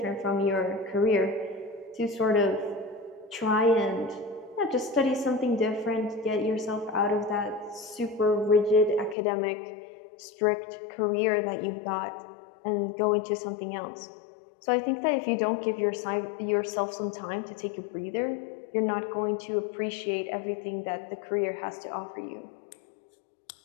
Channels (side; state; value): right; drops out; at 9.2 s